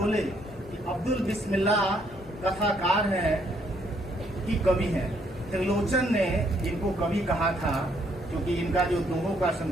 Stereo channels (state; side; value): normal; both; correlation 0.70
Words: कि अब्दुल बिस्मिल्लाह कथाकार हैं कि कवि हैं। त्रिलोचन ने इनको कवि कहा था, क्योंकि इनका जो दोहों का